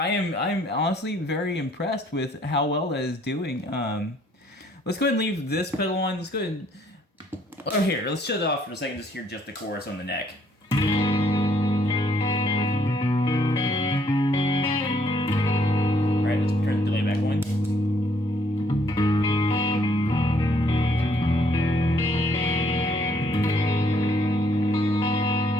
honestly very impressed with how well that is doing. Let's go ahead and leave this pedal on. Let's go ahead and here. Let's shut it off for a second. Just hear just the chorus on the neck. All right, let's turn the delay back on.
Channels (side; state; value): both; normal; correlation 0.66